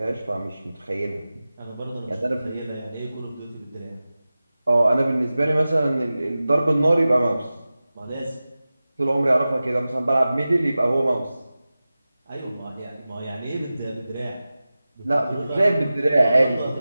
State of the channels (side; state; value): both; inverted; correlation -0.96